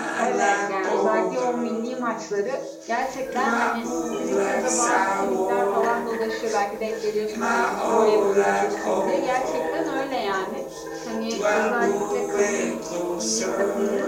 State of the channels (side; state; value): both; identical; correlation 1.00